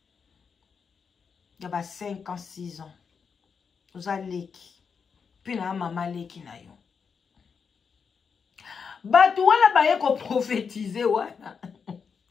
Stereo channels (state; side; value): quieter; right; 6.0 dB